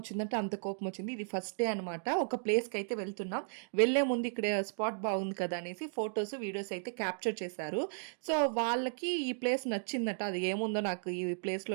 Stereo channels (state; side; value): silent; left; digital silence